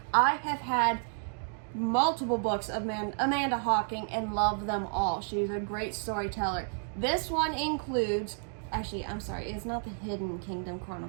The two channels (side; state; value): left; silent; 57 dB below the other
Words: I have had multiple books of Amanda Hocking and love them all. She's a great storyteller. This one includes, actually, I'm sorry, it's not the Hidden Kingdom